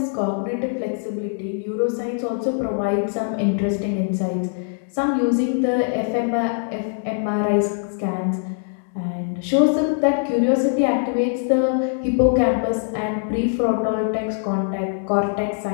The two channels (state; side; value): silent; right; digital silence